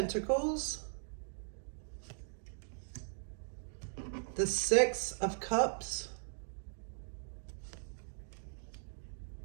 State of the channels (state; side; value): silent; left; digital silence